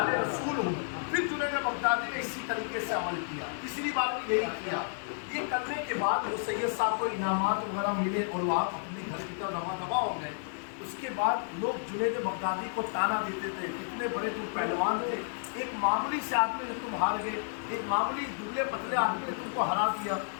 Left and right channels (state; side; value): silent; right; digital silence